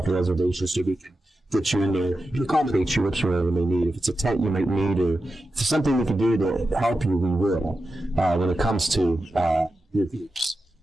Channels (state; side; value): normal; both; correlation 0.91